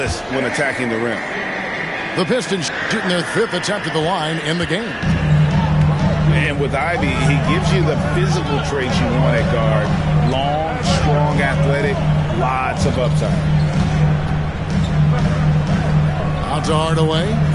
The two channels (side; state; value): both; identical; correlation 1.00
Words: when attacking the rim. The Pistons shooting their 5th attempt at the line in the game. And with Ivy, he gives you the physical traits you want at guard. Long, strong, athletic, lots of upside. Out to Hardaway.